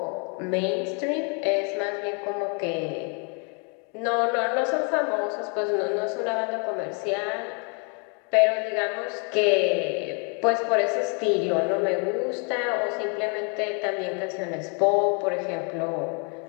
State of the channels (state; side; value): quieter; right; 37.2 dB